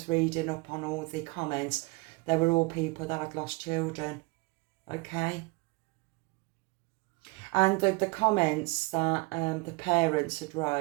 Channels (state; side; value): quieter; left; 26.1 dB